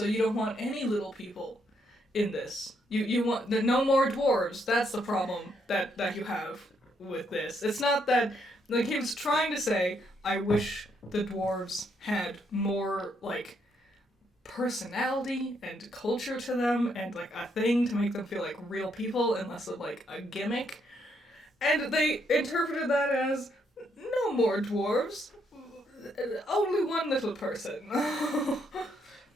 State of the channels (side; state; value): both; normal; correlation 0.75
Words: you don't want any little people in this. You want no more dwarves. That's the problem that you have with this. It's not that... Like, he was trying to say, I wish the dwarves had more, like, personality and culture to them and, like, a thing to make them feel like real people and less of, like, a gimmick. And they interpreted that as, no more dwarves, only one little person.